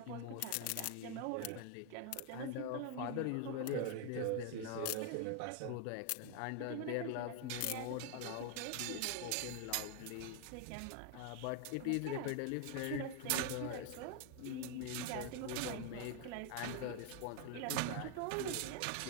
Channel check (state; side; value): different; both; correlation 0.01